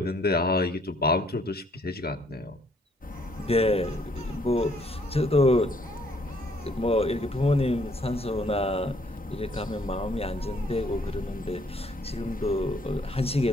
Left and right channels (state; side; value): normal; both; correlation 0.65